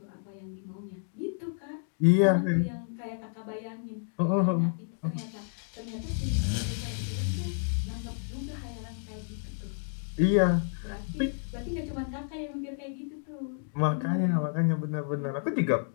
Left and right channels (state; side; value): silent; right; digital silence